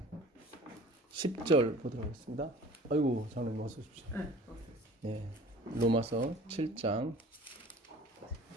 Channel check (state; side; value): normal; both; correlation 0.46